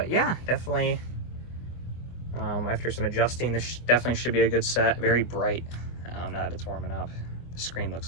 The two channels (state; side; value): late; right; 24 ms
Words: yeah, definitely, after some adjusting, this definitely should be a good set. Very bright now that it's warming up. The screen